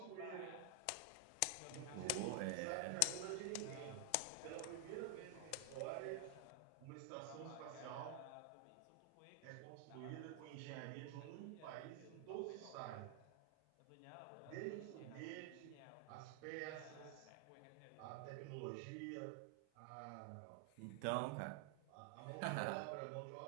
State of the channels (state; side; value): different; both; correlation 0.00